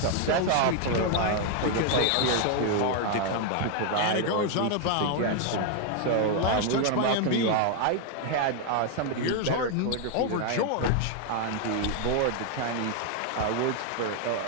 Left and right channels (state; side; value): different; both; correlation 0.01